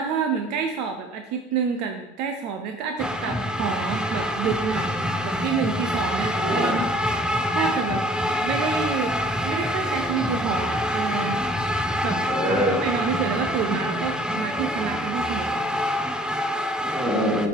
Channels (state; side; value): normal; both; correlation 0.55